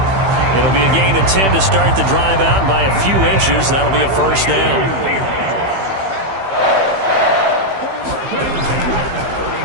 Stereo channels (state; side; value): late; left; 15 ms